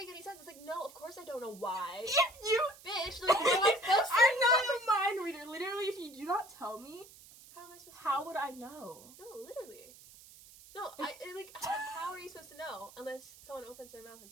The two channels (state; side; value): noise; right; hiss, 20 dB below the sound